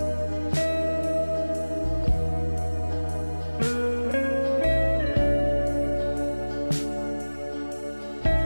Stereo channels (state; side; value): inverted; both; correlation -1.00